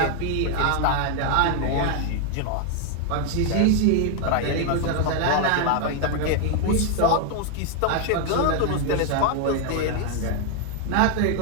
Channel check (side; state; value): both; different; correlation 0.00